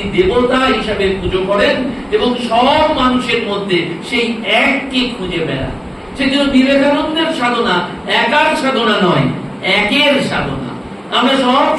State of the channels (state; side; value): identical; both; correlation 1.00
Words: দেবতা হিসাবে পুজো করেন এবং সব মানুষের মধ্যে সেই এককে খুঁজে বেড়ান। সেজন্য বিবেকানন্দের সাধনা একার সাধনা নয়, একের সাধনা। আমরা সব